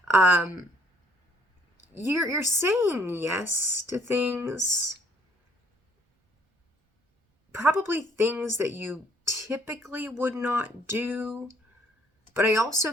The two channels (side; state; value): both; normal; correlation 0.63